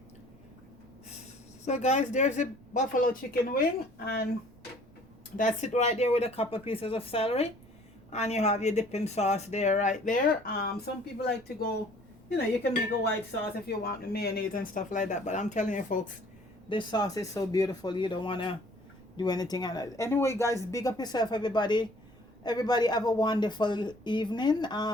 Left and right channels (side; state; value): right; noise; rumble, 26 dB below the sound